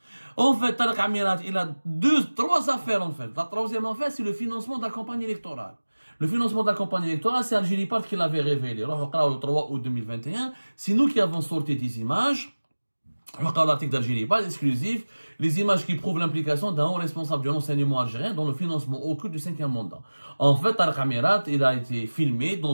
En fait, Tariq Amirat, il a trois affaires en fait. La troisième affaire, c'est le financement de la campagne électorale. Le financement de la campagne électorale, c'est Algérie Part qui l'avait révélé. Le 3 août 2021, c'est nous qui avons sorti des images. L'article d'Algérie Part exclusif, les images qui prouvent l'implication d'un haut responsable du renseignement algérien dans le financement occulte du 5e mandat. En fait, Tariq Amirat, il a été filmé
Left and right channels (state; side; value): inverted; both; correlation -1.00